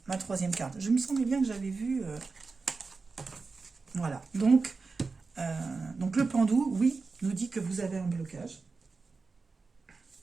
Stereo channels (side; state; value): left; quieter; 4.3 dB